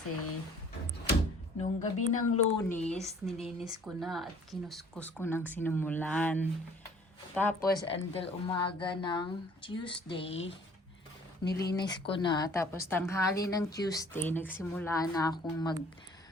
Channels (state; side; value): normal; both; correlation 0.54